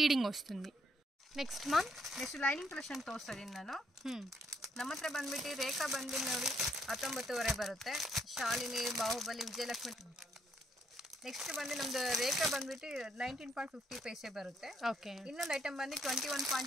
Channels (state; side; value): normal; both; correlation 0.71